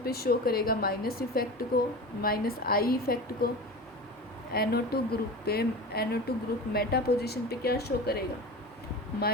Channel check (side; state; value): both; normal; correlation 0.31